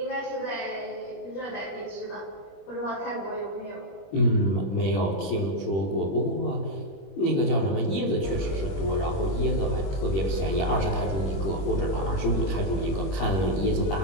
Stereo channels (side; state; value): right; late; 21 ms